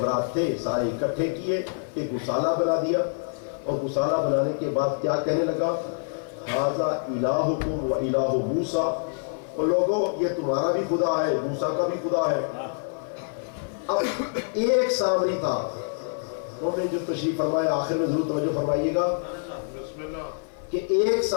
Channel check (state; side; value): silent; right; digital silence